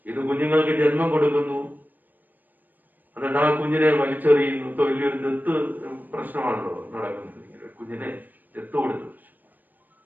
ഇത് കുഞ്ഞുങ്ങൾക്ക് ജന്മം കൊടുക്കുന്നു, എന്നിട്ട് ആ കുഞ്ഞിനെ വലിച്ചെറിയുന്നു. വലിയൊരു ദത്ത് പ്രശ്നമാണല്ലോ നടക്കുന്നത്. കുഞ്ഞിനെ ദത്ത് കൊടുത്തു.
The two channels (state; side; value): late; left; 0.088 ms